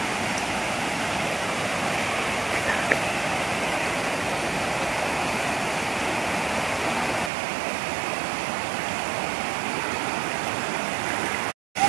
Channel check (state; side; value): drops out; left; at 7.3 s